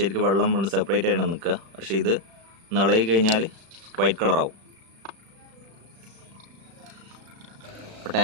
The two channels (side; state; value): left; late; 36 ms